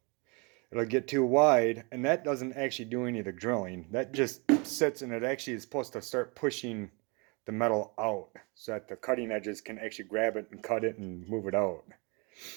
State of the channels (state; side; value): quieter; left; 30.6 dB